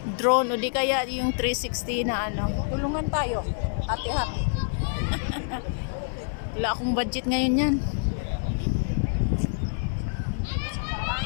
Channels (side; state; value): right; silent; digital silence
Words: drone o di kaya yung 360 na Tulungan tayo. Hati-hati. Wala akong budget ngayon yan.